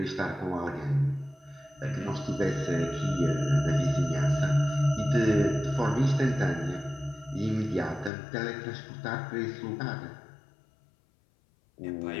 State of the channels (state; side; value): drops out; right; at 8.1 s